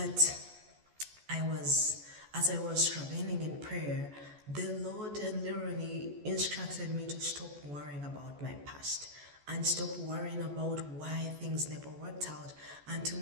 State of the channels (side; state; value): left; late; 14 ms